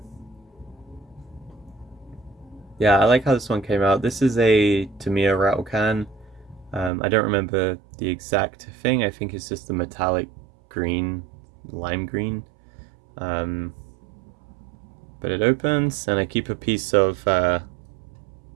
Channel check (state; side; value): drops out; left; at 6.9 s